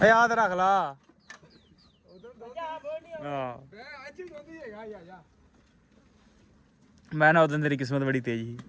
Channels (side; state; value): both; identical; correlation 1.00